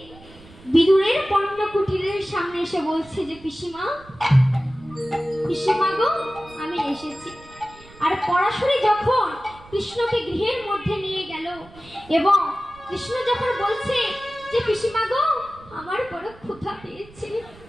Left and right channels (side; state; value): right; noise; rumble, 22 dB below the sound